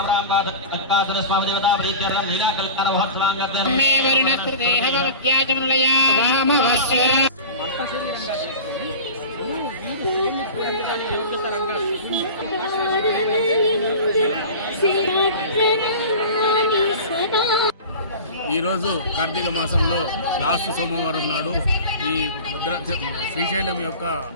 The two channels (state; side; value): inverted; both; correlation -0.33